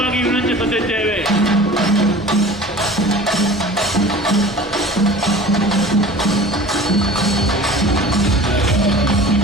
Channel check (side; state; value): both; normal; correlation 0.41